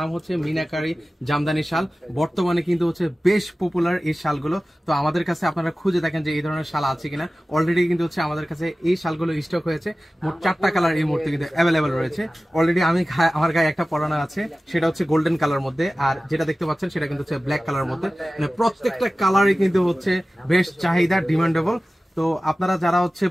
হচ্ছে মিনাকারি জামদানি শাল। বর্তমানে কিন্তু হচ্ছে বেশ পপুলার এই শালগুলো। তো আমাদের কাছে আপনারা খুঁজে দেখেন যে এই ধরনের শাল আছে কিনা। অলরেডি কিন্তু হচ্ছে আমাদের কাছে এই শালগুলো স্টক হয়েছে। মোট 4টা কালার এই মুহূর্তে কিন্তু অ্যাভেলেবেল রয়েছে। অলরেডি আমার গায়ে একটা পরানো আছে, সেটা হচ্ছে গোল্ডেন কালার মধ্যে, আর যেটা দেখতে পাচ্ছেন সেটা কিন্তু হচ্ছে ব্ল্যাক কালার মধ্যে। মানে প্রত্যেকটা কালারই কিন্তু হচ্ছে বেশ চাহিদা, ডিমান্ডেবল। তো আপনারা যারা হচ্ছে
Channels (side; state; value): both; normal; correlation 0.96